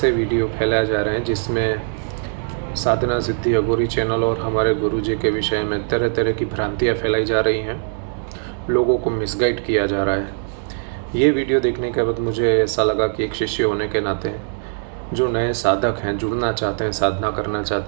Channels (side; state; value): left; silent; 65 dB below the other